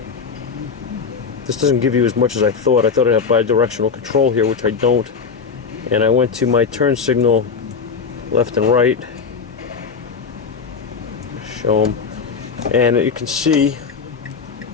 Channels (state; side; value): quieter; right; 5.6 dB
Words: This doesn't give you as much as I thought. I thought I'd have bi-directional control here, which I don't. And I went to my turn signal left and right. Show them. And you can see